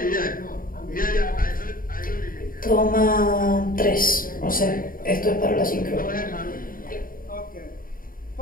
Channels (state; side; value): late; right; 0.41 ms